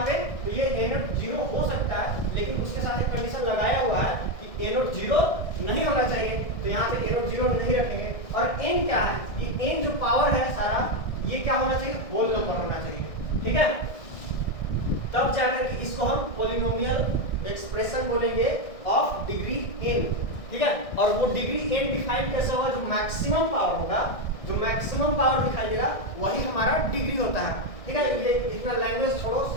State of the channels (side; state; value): right; late; 1.6 ms